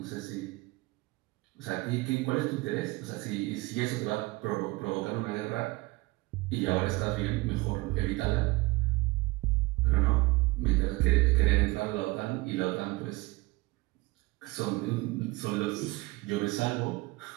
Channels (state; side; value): quieter; left; 22.5 dB